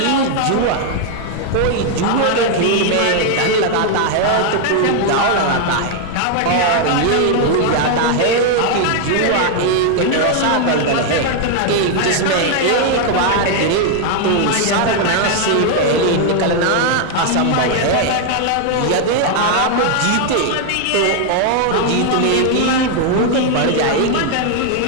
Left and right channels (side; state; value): both; different; correlation 0.00